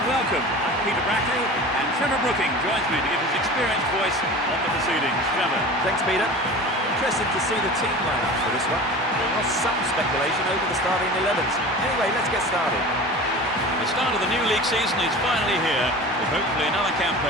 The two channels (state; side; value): normal; both; correlation 0.36